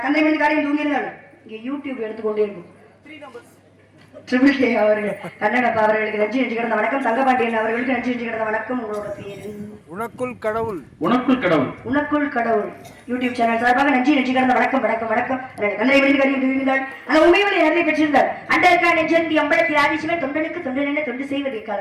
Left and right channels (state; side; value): identical; both; correlation 1.00